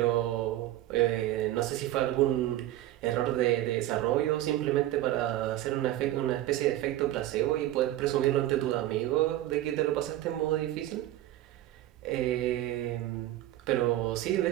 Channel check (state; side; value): quieter; left; 14.4 dB